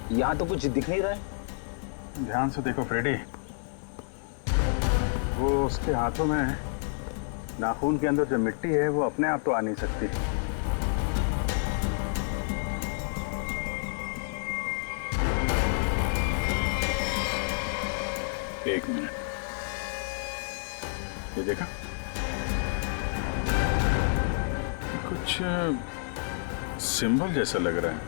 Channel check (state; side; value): silent; right; digital silence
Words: यहाँ तो कुछ दिख नहीं रहा है। ध्यान से देखो फ्रेडी, वो उसके हाथों में नाखून के अंदर जो मिट्टी है वो अपने आप तो आ नहीं सकती। एक मिनट, ये देखा? कुछ सिंबल जैसा लग रहा है